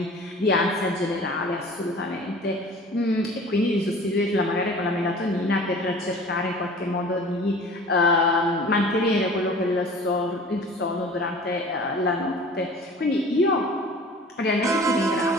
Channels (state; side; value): normal; both; correlation 0.44